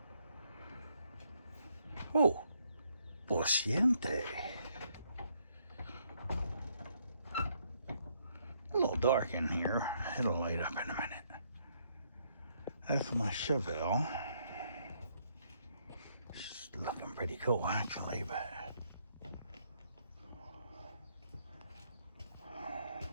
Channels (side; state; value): both; inverted; correlation -0.72